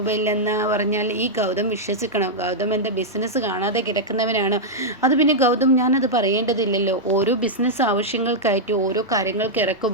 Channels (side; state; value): both; normal; correlation -0.05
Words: ഇല്ലെന്ന് പറഞ്ഞാൽ ഈ ഗൗതം വിശ്വസിക്കണം. ഗൗതം എൻ്റെ ബിസിനസ് കാണാതെ കിടക്കുന്നവനാണ്. അത് പിന്നെ ഗൗതം ഞാനത് പറയേണ്ടതില്ലല്ലോ. ഓരോ ബിസിനസ് ആവശ്യങ്ങൾക്കായിട്ട് ഓരോ കാര്യങ്ങൾക്ക്